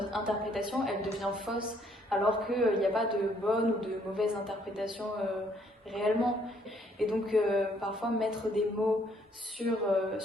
interprétation, elle devient fausse, alors qu'il n'y a pas de bonne ou de mauvaise interprétation réellement. Et donc, parfois, mettre des mots sur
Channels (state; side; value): normal; both; correlation 0.67